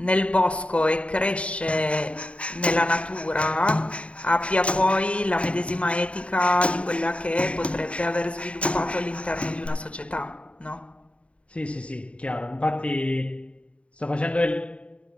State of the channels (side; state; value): right; late; 0.062 ms